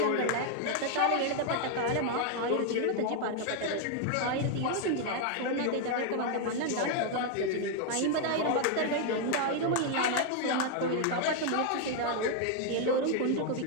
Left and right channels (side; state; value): both; different; correlation 0.00